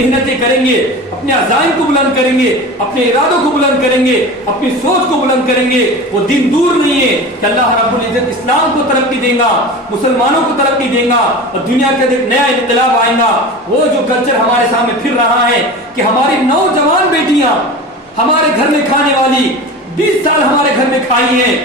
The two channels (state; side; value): normal; both; correlation 0.32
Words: کریں گے، اپنے عزائم کو بلند کریں گے، اپنے ارادوں کو بلند کریں گے، اپنی سوچ کو بلند کریں گے، وہ دن دور نہیں ہے کہ اللہ رب العزت اسلام کو ترقی دے گا، مسلمانوں کو ترقی دے گا، اور دنیا کے ایک نیا انقلاب آئے گا. وہ جو کلچر ہمارے سامنے پھر رہا ہے کہ ہماری نوجوان بیٹیاں ہمارے گھر میں کھانے والی 20 سال ہمارے گھر میں کھائی ہیں،